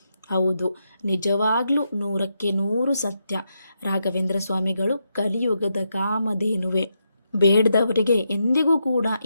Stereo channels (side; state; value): both; inverted; correlation -0.83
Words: ಹೌದು, ನಿಜವಾಗ್ಲೂ 100% ಸತ್ಯ. ರಾಘವೇಂದ್ರ ಸ್ವಾಮಿಗಳು ಕಲಿಯುಗದ ಕಾಮಧೇನುವೆ. ಬೇಡದವರಿಗೆ ಎಂದಿಗೂ ಕೂಡ